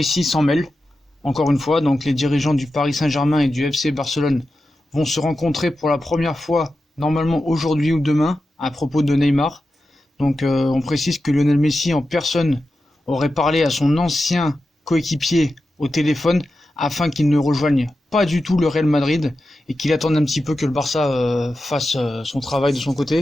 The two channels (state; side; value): normal; both; correlation 0.91